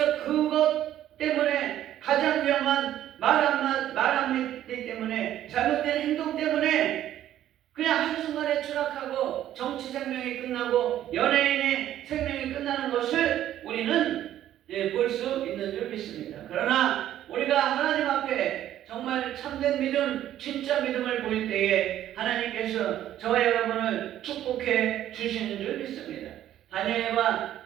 그것 때문에 가장 위험한 말 한마디 때문에 잘못된 행동 때문에 그냥 한순간에 추락하고 정치 생명이 끝나고 연예인의 생명이 끝나는 것을 우리는 볼 수 있는 줄 믿습니다. 그러나 우리가 하나님 앞에 정말 참된 믿음, 진짜 믿음을 보일 때에 하나님께서 저와 여러분을 축복해 주시는 줄 믿습니다. 다니엘과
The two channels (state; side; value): quieter; left; 12.1 dB